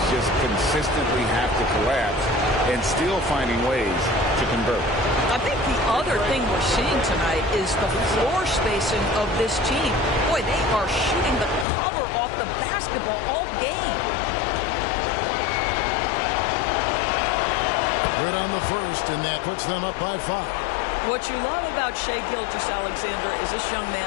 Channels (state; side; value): drops out; right; at 11.7 s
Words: just consistently have to collapse and still finding ways to convert. I think the other thing we're seeing tonight is the floor spacing of this team. Boy, they are shooting the cover off the basketball all game. Good on the first, and that puts them up by 5. What you love about Shai Gilgeous-Alexander is this young